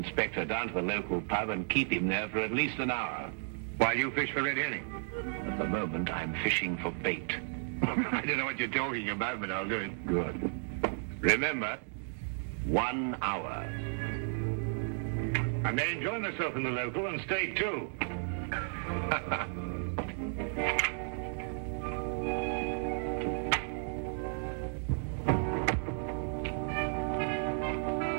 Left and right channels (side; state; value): left; silent; 55 dB below the other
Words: down to the local pub and keep him there for at least an hour. While you fish for red herring? At the moment, I'm fishing for bait. I don't know what you're talking about, but I'll do it. Good. Remember, 1 hour. I may enjoy myself in the local and stay too.